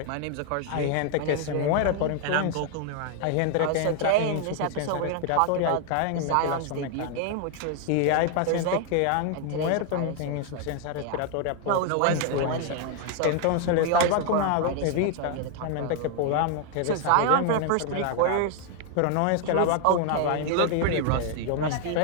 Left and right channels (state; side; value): different; both; correlation 0.00